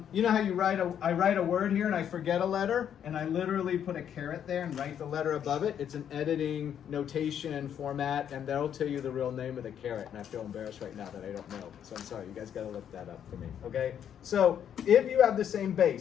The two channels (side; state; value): right; quieter; 9.1 dB